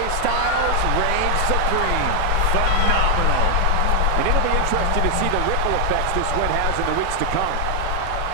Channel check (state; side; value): different; both; correlation 0.00